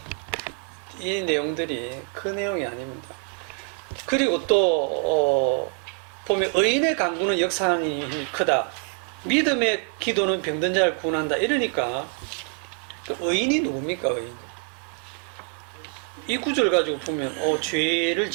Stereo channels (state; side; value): quieter; left; 37.3 dB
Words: 이 내용들이 그 내용이 아닙니다. 그리고 또 보면 의인의 간구는 역사하는 힘이 크다. 믿음의 기도는 병든 자를 구원한다. 이러니까 의인이 누굽니까? 의인. 이 구절 가지고 보면 죄를